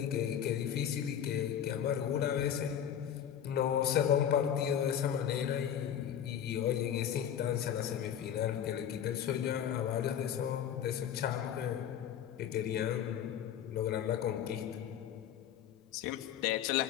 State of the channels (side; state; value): right; quieter; 9.5 dB